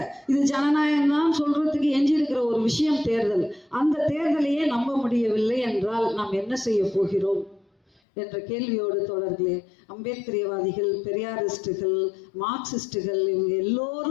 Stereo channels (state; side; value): drops out; right; at 8.0 s